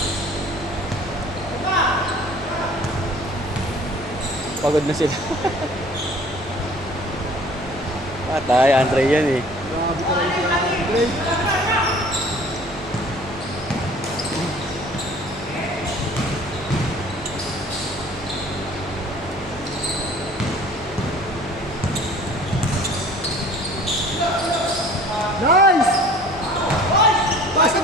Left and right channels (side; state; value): both; normal; correlation 0.49